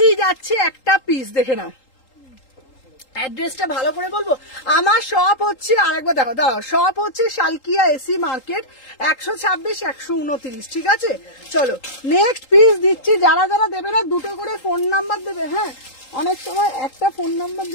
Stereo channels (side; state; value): right; late; 3.8 ms